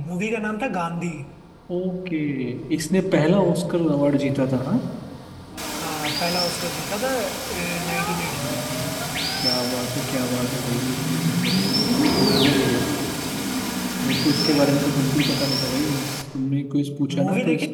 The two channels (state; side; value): identical; both; correlation 1.00